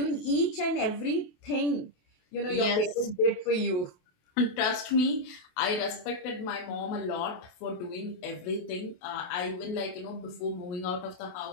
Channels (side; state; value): right; late; 28 ms